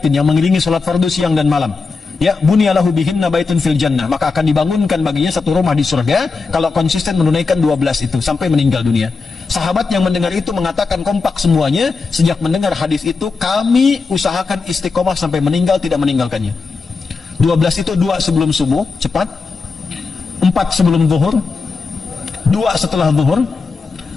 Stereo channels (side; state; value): right; quieter; 4.4 dB